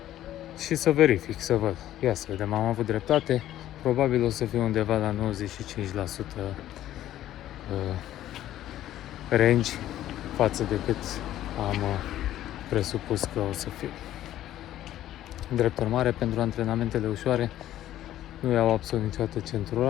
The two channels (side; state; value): right; quieter; 13.0 dB